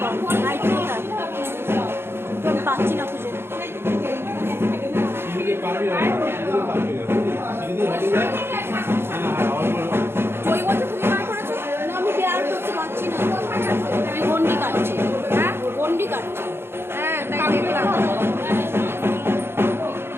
কর, নাইটি কোথায়? তো আমি পাচ্ছি না খুঁজে। ওই বলতে তুমি বার করেছো? না, আমি বের করতে পারছি না। আমি গন্ডি কাটছি। হ্যাঁ গন্ডি কাটছি। হ্যাঁ তাই দেখলাম।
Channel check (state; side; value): late; left; 0.11 ms